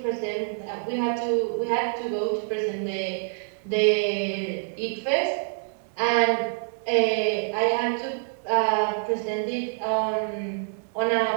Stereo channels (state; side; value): silent; left; 61 dB below the other